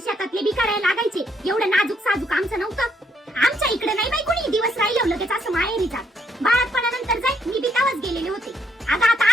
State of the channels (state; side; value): normal; both; correlation 0.72